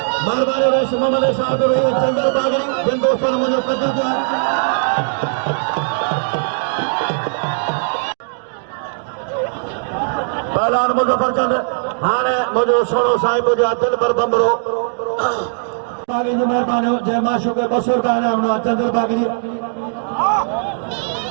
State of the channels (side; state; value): left; silent; digital silence